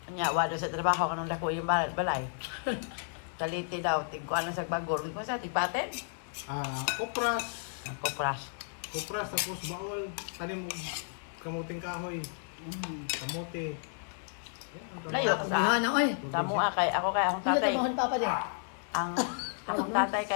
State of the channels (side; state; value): right; silent; 56 dB below the other